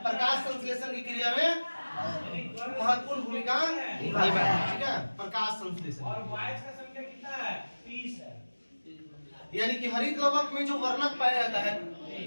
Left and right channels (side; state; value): both; inverted; correlation -1.00